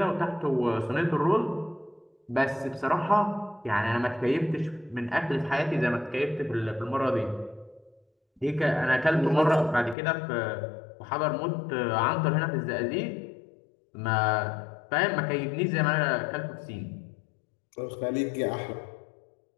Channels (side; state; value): right; drops out; at 10.0 s